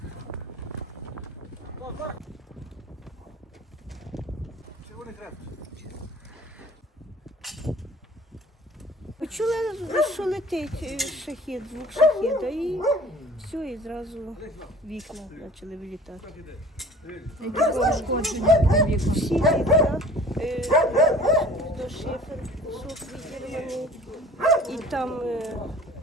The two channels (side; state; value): both; normal; correlation 0.47